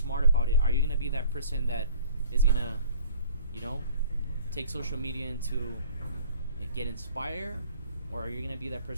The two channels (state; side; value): inverted; both; correlation -0.49